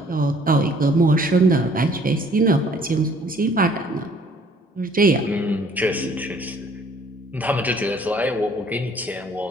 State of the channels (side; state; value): both; normal; correlation 0.58